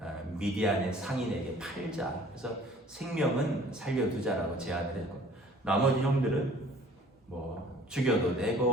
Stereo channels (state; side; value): normal; both; correlation 0.51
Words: 미디안의 상인에게 팔자. 그래서 생명은 살려두자라고 제안을 했고, 나머지 형들은 뭐 죽여도